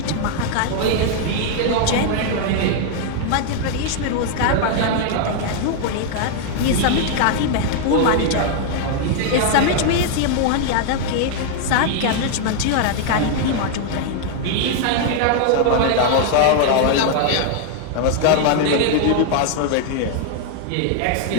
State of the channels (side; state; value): both; different; correlation 0.00